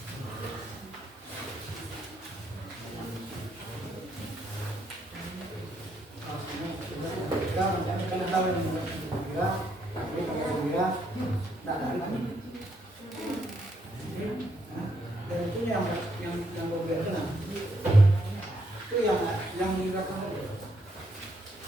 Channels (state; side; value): normal; both; correlation 0.75